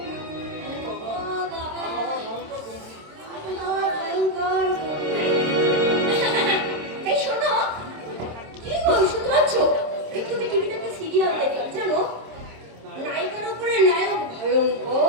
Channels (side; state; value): left; late; 26 ms